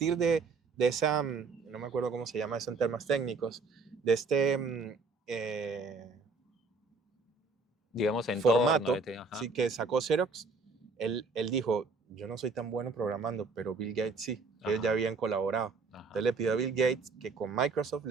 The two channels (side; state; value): left; quieter; 4.1 dB